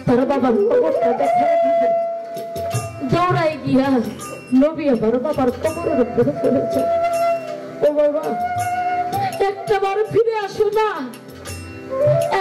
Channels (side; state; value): both; identical; correlation 1.00